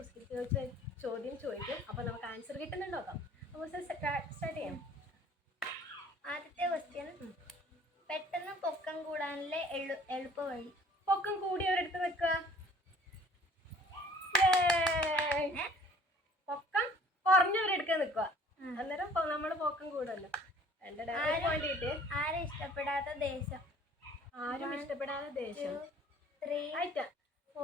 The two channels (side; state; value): both; normal; correlation 0.53